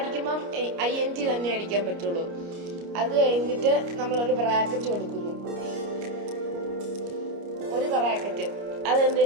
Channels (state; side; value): late; left; 29 ms